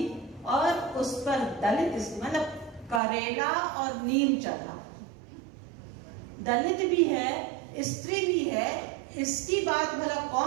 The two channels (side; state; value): left; drops out; at 3.0 s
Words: और उस पर दलित, मतलब करेला और नीम चढ़ा, दलित भी है, स्त्री भी है, इसकी बात भला